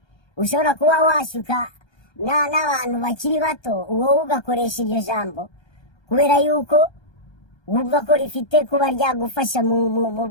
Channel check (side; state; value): right; late; 1.3 ms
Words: ushobora kuba washuka n'abantu bakiri bato, wowe ugakoresha iryo jambo kubera yuko wumva ko rifite kuba ryagufasha